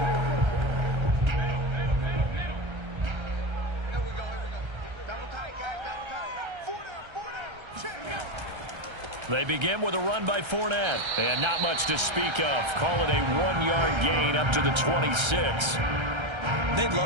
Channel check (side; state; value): left; late; 1.3 ms